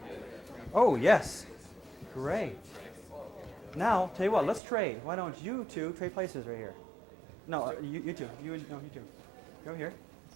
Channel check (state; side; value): drops out; left; at 4.6 s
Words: Oh, yes. Great. Now, tell you what, let's trade. Why don't you two trade places right here? No, you two. You two. Go here.